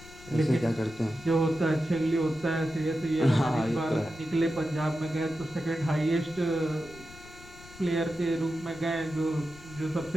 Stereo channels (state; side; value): noise; left; rumble, 19 dB below the sound